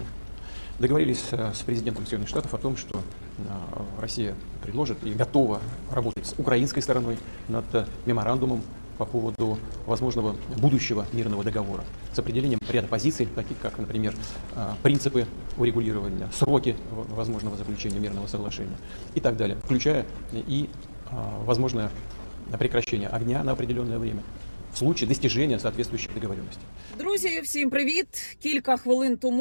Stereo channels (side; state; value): both; inverted; correlation -1.00